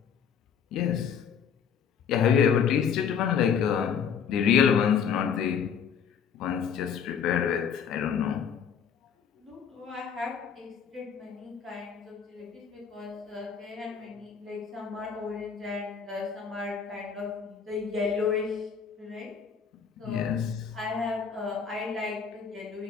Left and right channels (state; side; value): quieter; right; 7.2 dB